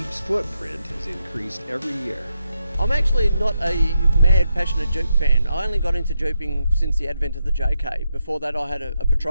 footprint has increased every year. I'm actually not a mad, passionate Jeep fan. I only got into Jeeping since the advent of the JK. Before that, I had a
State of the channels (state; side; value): inverted; both; correlation -0.84